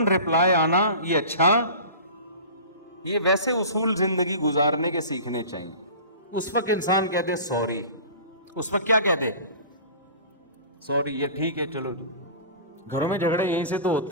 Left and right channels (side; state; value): both; inverted; correlation -0.38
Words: رپلائی آنا یہ اچھا، یہ ویسے اصول زندگی گزارنے کے سیکھنے چاہیے۔ اس وقت انسان کہہ دے سوری، اس وقت کیا کہہ دے؟ سوری، یہ ٹھیک ہے، چلو۔ گھروں میں جھگڑے یہیں سے تو